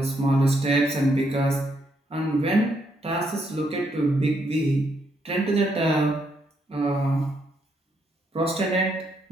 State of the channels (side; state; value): both; normal; correlation 0.76